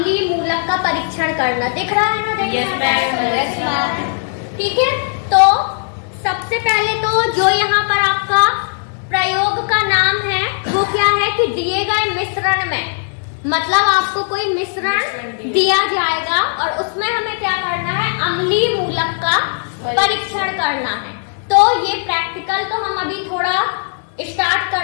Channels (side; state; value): right; silent; 68 dB below the other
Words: मूलक का परीक्षण करना। दिख रहा है ना? यस। ठीक है, तो सबसे पहले तो जो यहाँ पर आपका प्रयोग का नाम है वो क्या है कि दिए गए मिश्रण में, मतलब आपको कोई मिश्रण दिया जाएगा और उसमें हमें क्या करना है? अम्लीय मूलक का परीक्षण करना है। तो ये प्रैक्टिकल तो हम अभी थोड़ा स्टार्ट